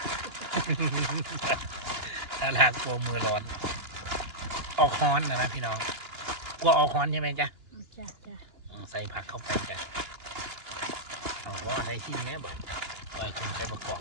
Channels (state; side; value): late; left; 2.9 ms